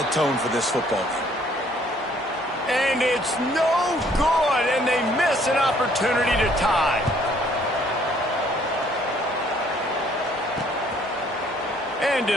tone for this football game. And it's no good, and they miss an opportunity to tie. And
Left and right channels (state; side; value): normal; both; correlation 0.62